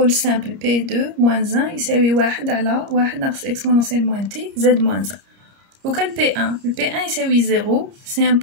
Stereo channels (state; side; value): late; left; 30 ms